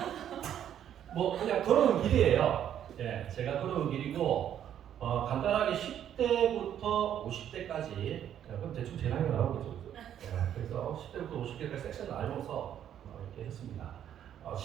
뭐 그냥 걸어온 길이에요. 예, 제가 걸어온 길이고 간단하게 10대부터 50대까지 그럼 대충 제 나이가 나오겠죠. 예, 그래서 10대부터 50대까지 섹션을 나눠서 이렇게 했습니다.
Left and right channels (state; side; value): quieter; left; 10.1 dB